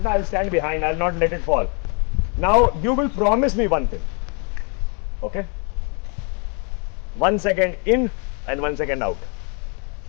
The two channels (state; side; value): quieter; right; 36.6 dB